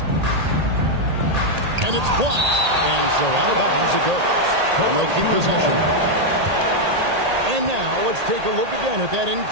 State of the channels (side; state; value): left; late; 1.8 ms